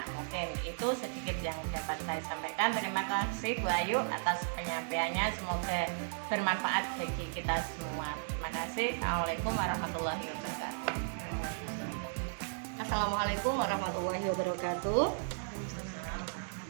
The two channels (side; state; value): left; silent; digital silence